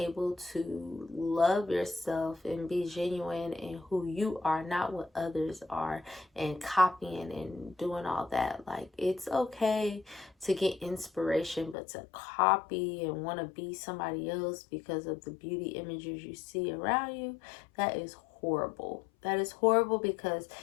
to love yourself and be genuine in who you are, not what others are, and copying and doing all that. Like, it's okay to get inspiration, but to copy and want to be somebody else because of the beauty images you see around you, that is horrible. That is horrible, because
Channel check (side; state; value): right; drops out; at 11.8 s